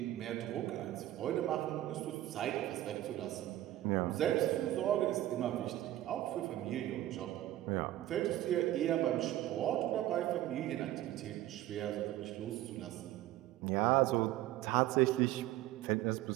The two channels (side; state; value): left; quieter; 14.5 dB